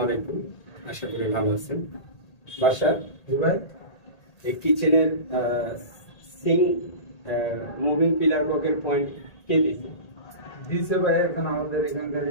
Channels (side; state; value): right; late; 1.8 ms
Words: আলাইকুম, আশা করি ভালো আছেন। বাসা জি ভাই, এই কিচেনের সিঙ্ক মুভিং পিলার ব্লকের পয়েন্ট কে দিয়েছে? দিছে ভাই। এখন আমাদের এখানকার